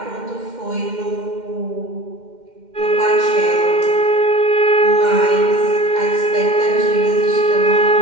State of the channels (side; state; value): left; late; 2.1 ms